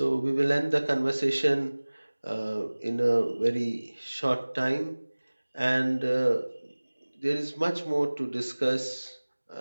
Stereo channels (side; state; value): both; inverted; correlation -1.00